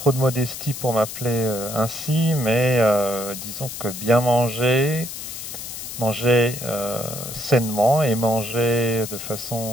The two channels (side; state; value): left; noise; hiss, 9 dB below the sound